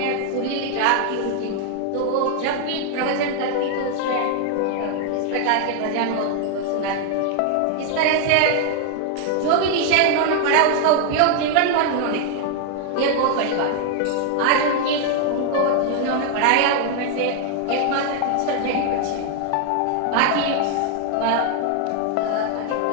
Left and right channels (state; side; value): different; both; correlation 0.00